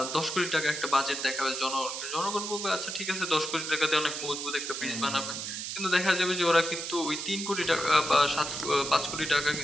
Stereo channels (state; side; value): noise; right; hiss, 5 dB below the sound